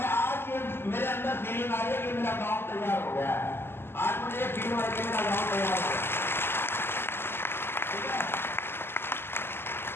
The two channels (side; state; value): right; late; 0.11 ms